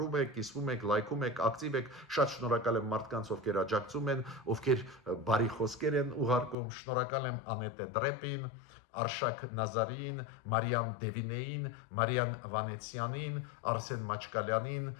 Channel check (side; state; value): right; drops out; at 6.6 s